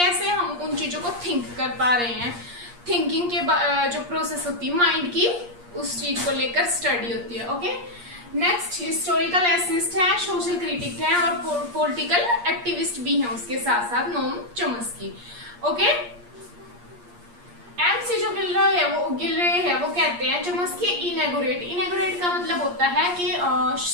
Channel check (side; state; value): left; late; 8.5 ms